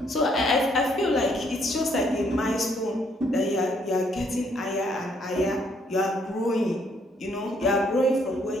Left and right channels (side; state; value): both; normal; correlation 0.69